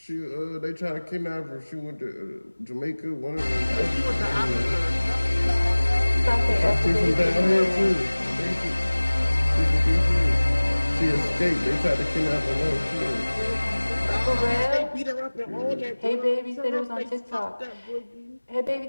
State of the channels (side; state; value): both; inverted; correlation -1.00